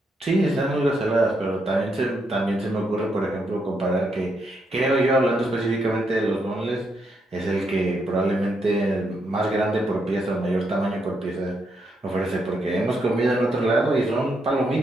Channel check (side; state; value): both; normal; correlation 0.79